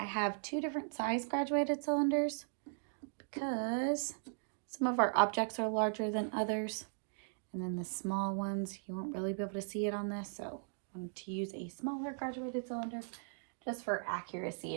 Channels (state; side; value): silent; left; digital silence